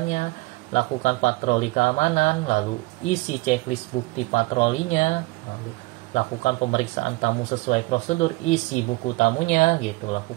lakukan patroli keamanan, lalu isi checklist bukti patrolinya, lalu lakukan pemeriksaan tamu sesuai prosedur, isi buku tamunya gitu,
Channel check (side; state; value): left; quieter; 23.2 dB